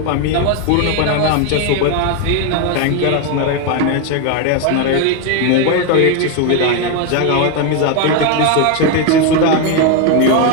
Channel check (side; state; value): both; different; correlation 0.01